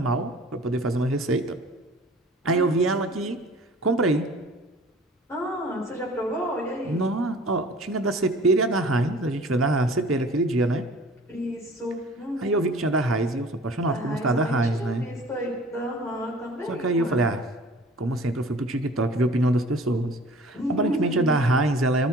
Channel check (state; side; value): normal; both; correlation 0.47